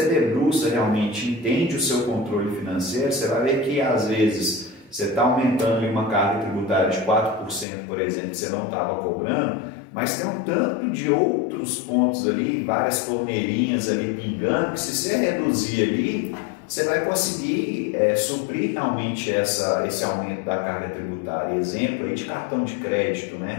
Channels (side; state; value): right; drops out; at 7.7 s